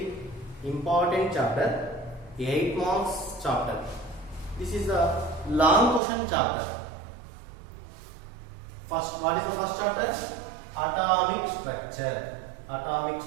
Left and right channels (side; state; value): left; drops out; at 6.0 s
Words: important chapter. 8 marks chapter. This is the long question chapter. First, what is the first chapter? Atomic structure. Atomic